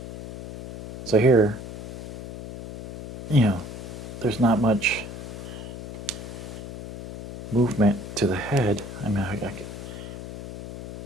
So here, there's not much movement to the head. I mean,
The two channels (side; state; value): left; noise; hum, 10 dB below the sound